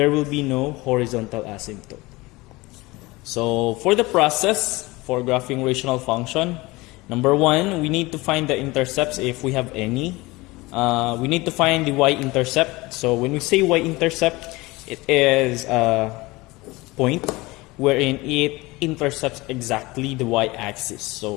will be no horizontal asymptote. So for the process for graphing rational function, number one, we need to find the intercepts if we have any. We need to find the y-intercept. So when we say y-intercept, it is a point wherein it intercepts exactly the y-axis.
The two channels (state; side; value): quieter; right; 21.9 dB